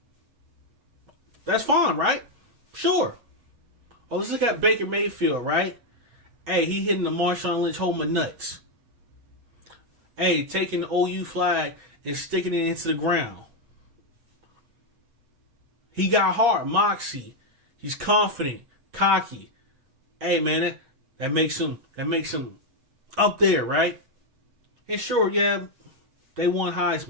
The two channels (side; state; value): left; late; 7.9 ms